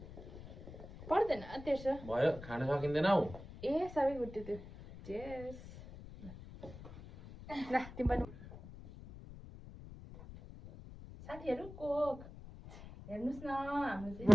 पर्दैन 1300 भयो खान सकिँदैन हौ ए सबै गुड्यो त्यो चेस ल तिम्रो साथीहरु कोक हेर्नुस् न हाम्रो चाहिँ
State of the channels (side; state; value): left; noise; rumble, 15 dB below the sound